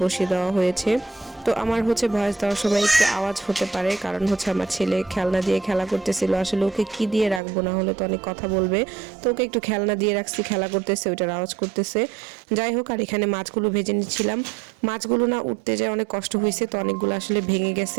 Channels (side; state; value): left; drops out; at 7.4 s